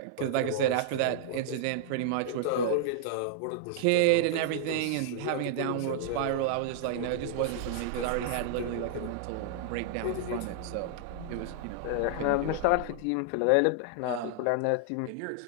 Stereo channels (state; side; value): different; both; correlation -0.01